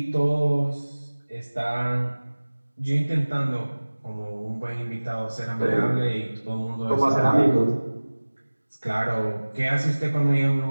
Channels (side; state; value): both; inverted; correlation -1.00